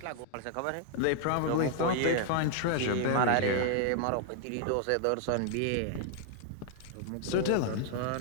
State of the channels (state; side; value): different; both; correlation 0.00